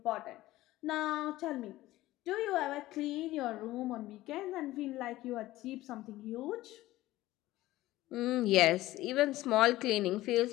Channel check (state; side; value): quieter; right; 16.6 dB